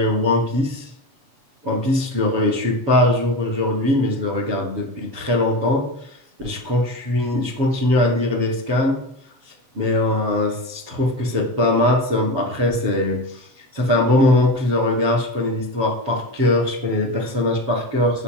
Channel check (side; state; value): left; late; 7.2 ms